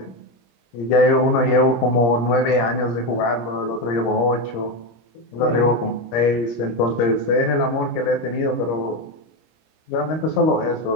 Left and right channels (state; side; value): late; right; 26 ms